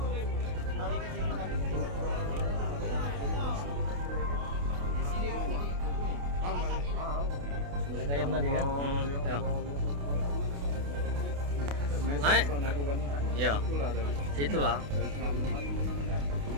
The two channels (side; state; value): left; late; 28 ms